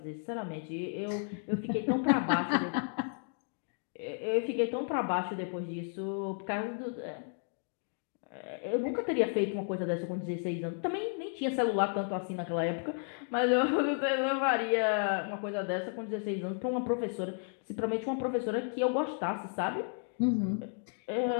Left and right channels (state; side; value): silent; right; 56 dB below the other